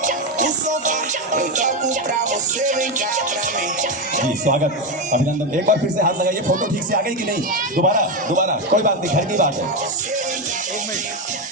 जी, स्वागत, अभिनंदन। एक बार फिर से हाथ लगाइए। फोटो ठीक से आ गई कि नहीं? दोबारा कोई बात नहीं, घर की बात है।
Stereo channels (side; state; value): both; normal; correlation 0.10